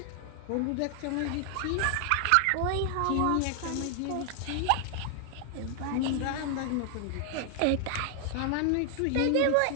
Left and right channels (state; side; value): different; both; correlation 0.00